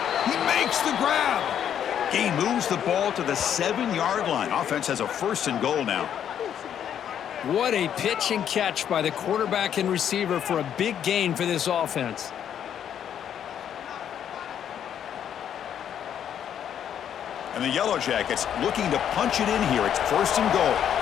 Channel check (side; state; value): right; quieter; 9.4 dB